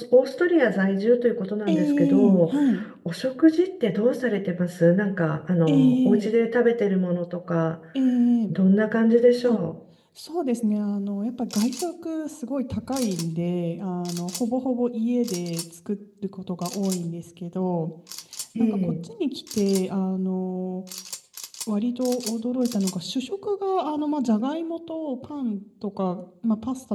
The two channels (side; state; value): both; identical; correlation 1.00